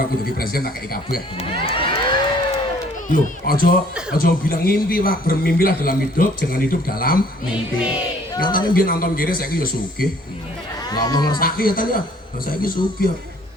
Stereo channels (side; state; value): both; normal; correlation 0.58